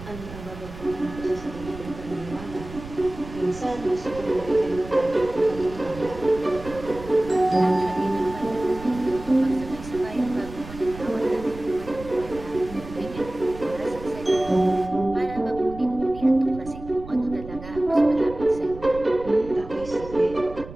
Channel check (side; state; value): right; noise; rumble, 14 dB below the sound